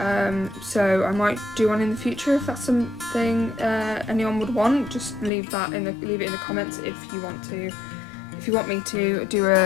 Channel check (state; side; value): drops out; right; at 5.3 s